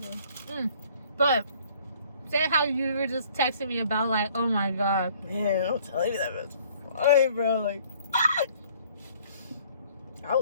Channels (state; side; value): inverted; both; correlation -0.58